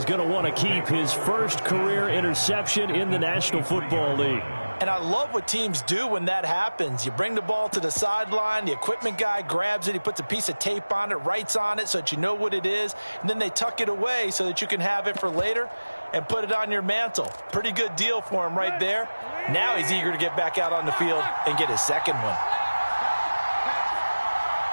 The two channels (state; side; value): inverted; both; correlation -1.00